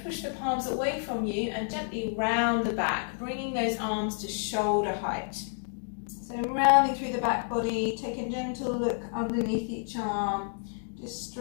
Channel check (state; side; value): silent; right; digital silence